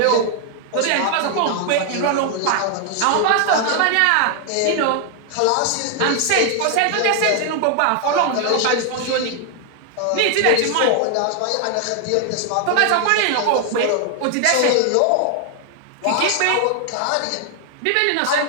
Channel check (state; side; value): different; both; correlation 0.00